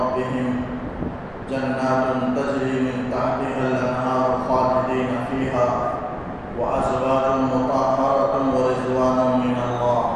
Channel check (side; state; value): both; identical; correlation 1.00